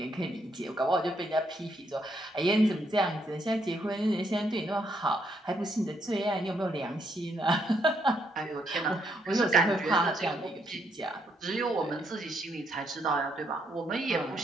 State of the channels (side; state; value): both; normal; correlation 0.74